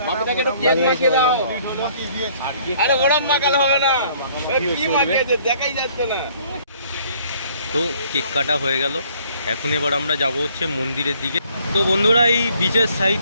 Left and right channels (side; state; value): both; inverted; correlation -0.60